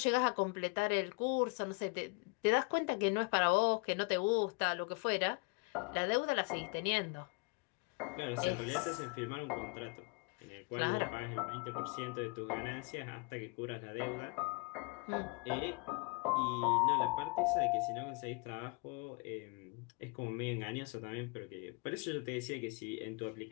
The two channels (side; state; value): right; quieter; 31.2 dB